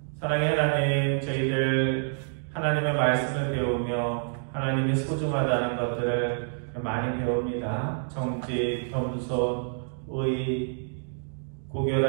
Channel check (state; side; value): silent; left; digital silence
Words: 사랑의 하나님, 저희들 하나님의 말씀을 배우며 하나님의 소중하다는 것들을 많이 배웁니다. 정직, 겸손, 의,